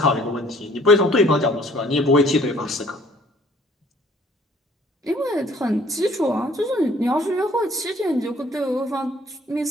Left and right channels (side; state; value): both; normal; correlation 0.58